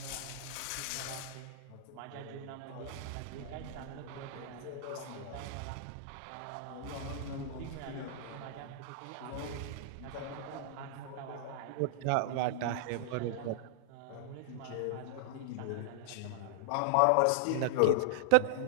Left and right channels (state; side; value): different; both; correlation -0.01